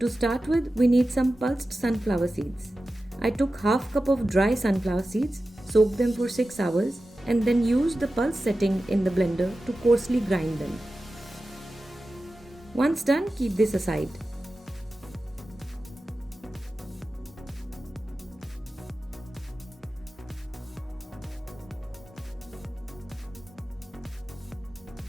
start with, we need some pulsed sunflower seeds. I took half cup of dry sunflower seeds, soaked them for 6 hours, and then used the pulse setting in the blender to coarsely grind them. Once done, keep this aside.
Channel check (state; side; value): normal; both; correlation 0.94